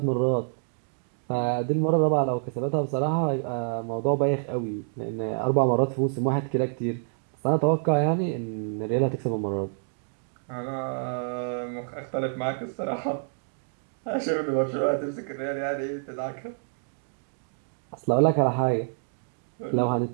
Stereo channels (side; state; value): left; silent; digital silence